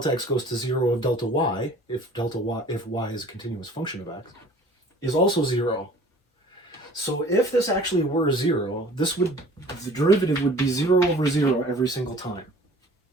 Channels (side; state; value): both; normal; correlation 0.49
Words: x goes to 0 of delta y, if y is a continuous function of x, is also 0. So if this actually were 0, the derivative would be 0 over 0 every single time,